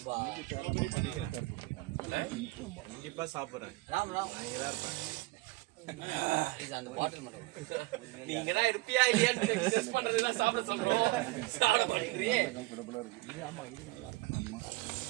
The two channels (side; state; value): left; quieter; 21.1 dB